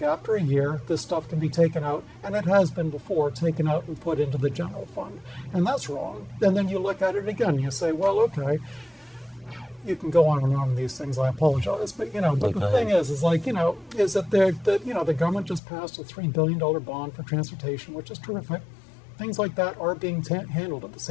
a year, this stuff can be taken out, and it has been before, taken out and put into the general fund. And that's wrong. And then you look at it again, you say, well, okay, you can go on and on these things, I apologize. But, but the thing is that the government just passed a $3 billion bond for transportation, which is terrific. Things like that are being handled at the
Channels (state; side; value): drops out; right; at 15.6 s